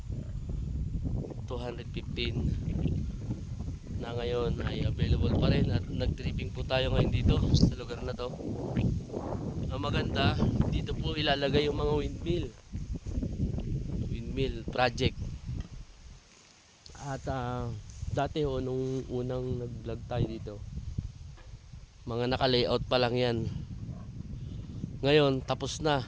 na ngayon ay available pa rin at nag-tripping po tayo ngayon dito sa lugar na to. Ang maganda, dito po ilalagay yung mga windmill project. At dati nung unang nag-vlog tayo dito, mga naka-layout pa lang yan. Ngayon tapos na,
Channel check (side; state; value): both; identical; correlation 1.00